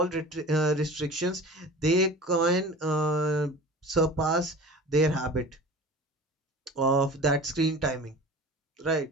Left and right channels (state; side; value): normal; both; correlation 0.38